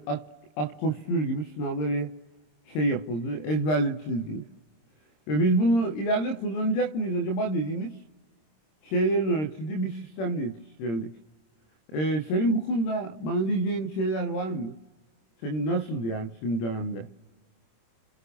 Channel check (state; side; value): late; right; 26 ms